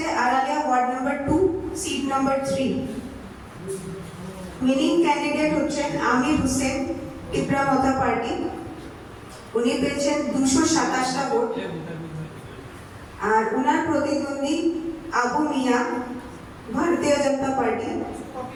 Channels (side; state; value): both; identical; correlation 1.00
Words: Araliya ward number 2 seat number 3 winning candidate হচ্ছেন আমির হোসেন টিকরামাথা পার্টি, উনি পেয়েছেন 227টা ভোট। আর ওনার প্রতিদ্বন্দ্বী আবু মিয়া ভারতীয় জনতা পার্টি,